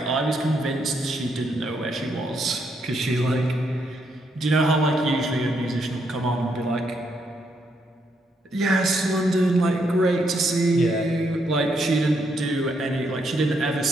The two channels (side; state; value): both; normal; correlation 0.76